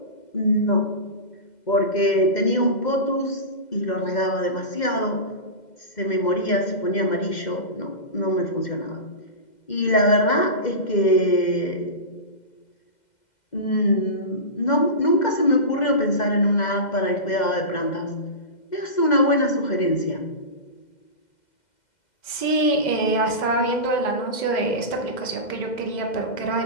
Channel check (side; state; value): right; late; 2.1 ms